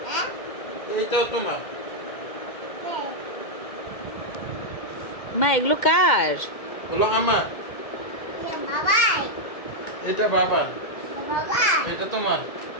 এইটাও তোমার। মা এগুলো কার? বলো আমার। এটা বাবার। এটা তোমার।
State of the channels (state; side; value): late; right; 2.1 ms